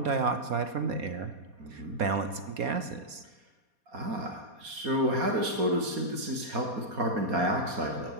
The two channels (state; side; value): late; left; 4.2 ms